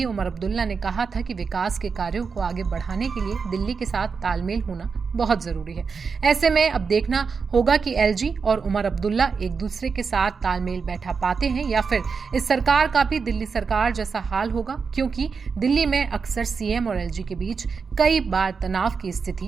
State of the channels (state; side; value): quieter; left; 5.3 dB